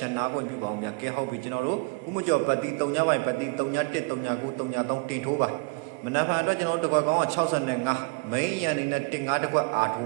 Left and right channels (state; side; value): quieter; left; 29.5 dB